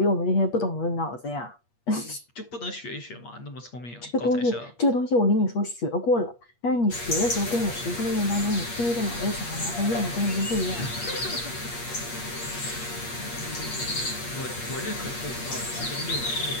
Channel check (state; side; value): late; right; 8.4 ms